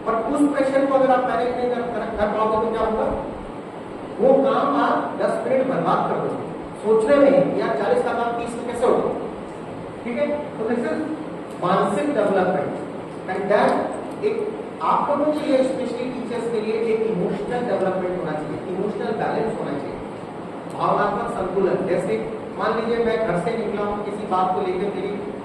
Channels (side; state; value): both; identical; correlation 1.00